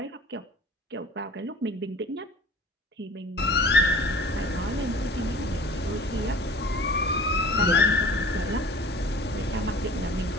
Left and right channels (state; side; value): normal; both; correlation 0.45